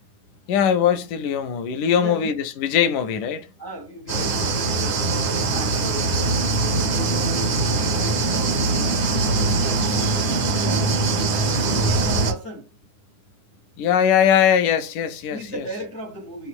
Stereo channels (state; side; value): late; right; 10 ms